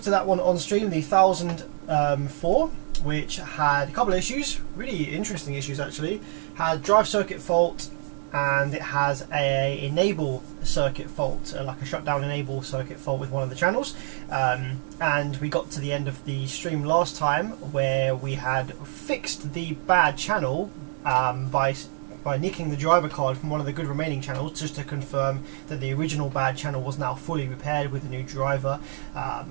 at that one on stream, the 1004, which had a couple of issues, really interesting issues actually. Had drive circuit fault, and it has a enable circuit fault, like a shutdown enable circuit fault with one of the channels. And we got to the end of the stream last time where we had fixed the bad channel by nicking the driver card from one of the good remaining channels, just to confirm that the original bad channel was now fully repaired with a new driver.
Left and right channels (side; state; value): left; silent; digital silence